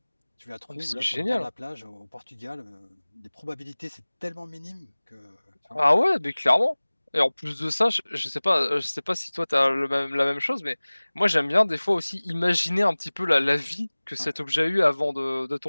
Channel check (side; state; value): both; inverted; correlation -1.00